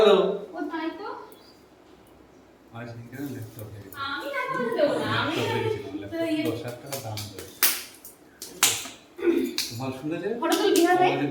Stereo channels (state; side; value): identical; both; correlation 1.00